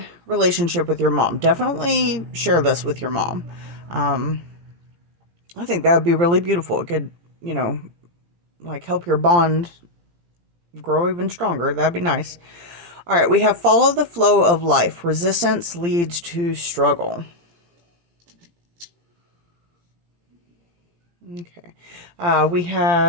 relationship with your mom, definitely share this with your mom. I think that would be really beautiful. It could, like help your bond grow even stronger. That'd be nice. All right, we have follow the flow of life. Resistance leads to struggle. Okay. We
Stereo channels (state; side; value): late; left; 17 ms